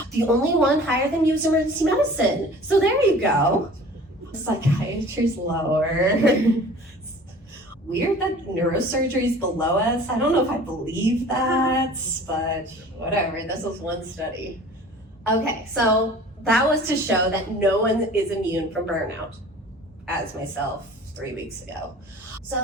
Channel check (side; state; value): both; normal; correlation 0.45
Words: The only one higher than you is emergency medicine. So there you go. Psychiatry's lower. Weird that neurosurgery is below us. I don't know if I believe that, but whatever. This was one study. Okay, so that was to show that no one is immune from burnout, as myself 3 weeks ago.